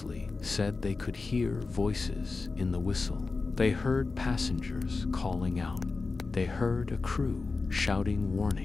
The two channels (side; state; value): right; quieter; 4.0 dB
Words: said they could hear voices in the whistle. They heard passengers calling out. They heard a crew shouting